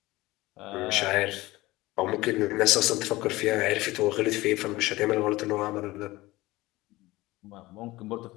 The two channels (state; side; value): quieter; right; 19.4 dB